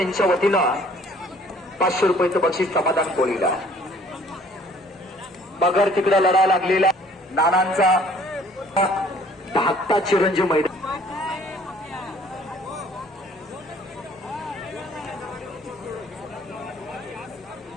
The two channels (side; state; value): both; normal; correlation 0.56